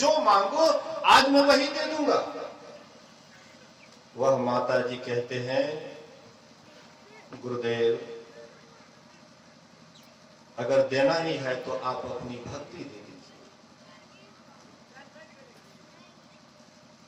मांगो आज मैं वही दे दूंगा। वह माता जी कहते हैं गुरुदेव अगर देना ही है तो आप अपनी भक्ति दे दीजिए।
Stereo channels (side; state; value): both; identical; correlation 1.00